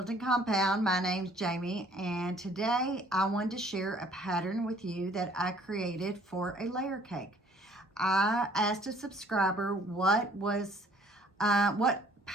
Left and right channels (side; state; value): both; normal; correlation 0.58